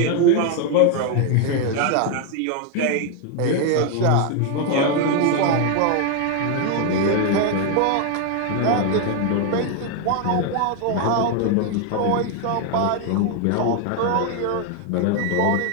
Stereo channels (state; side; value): different; both; correlation 0.01